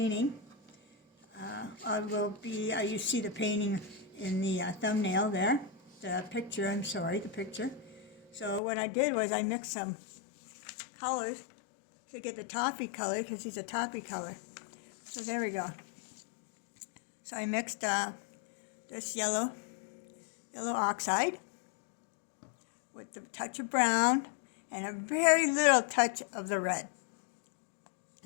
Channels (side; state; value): right; drops out; at 8.6 s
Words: You see the painting in the thumbnail there, the picture. So what I did was I mixed some colors to get the toffee color, because he's a toffee color. So there we go. So I mixed this yellow oxide with a touch of brown and a very little touch of the red.